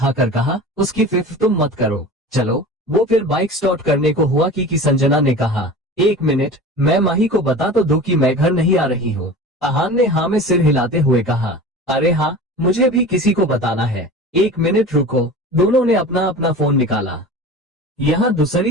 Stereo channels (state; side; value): normal; both; correlation 0.35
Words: कहा, उसकी फिक्र तुम मत करो, चलो। वो फिर बाइक स्टार्ट करने को हुआ कि संजना ने कहा, 1 मिनट, मैं माही को बता तो दो कि मैं घर नहीं आ रही हूँ। अहान ने हाँ में सिर हिलाते हुए कहा, अरे हाँ, मुझे भी किसी को बताना है। 1 मिनट रुको। दोनों ने अपना अपना फोन निकाला। यहाँ